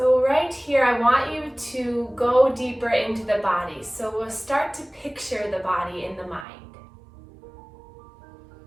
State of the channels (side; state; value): left; drops out; at 6.5 s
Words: right here, I want you to go deeper into the body. So we'll start to picture the body in the mind.